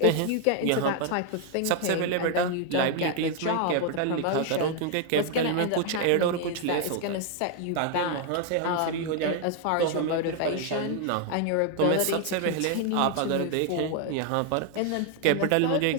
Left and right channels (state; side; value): different; both; correlation 0.00